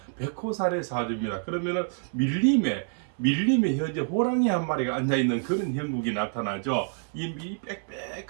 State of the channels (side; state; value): left; silent; 60 dB below the other